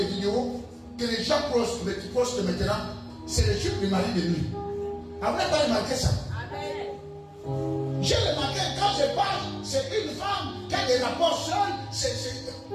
vidéos que les gens postent maintenant, c'est le chute du mari de nuit. Vous n'avez pas remarqué ça? J'ai remarqué quand je parle, c'est une femme qui a des rapports seuls,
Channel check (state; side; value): identical; both; correlation 1.00